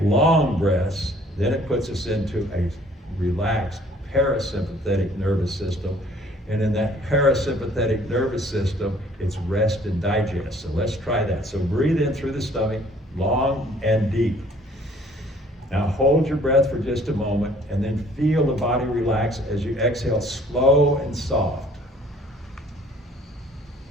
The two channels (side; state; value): both; normal; correlation 0.57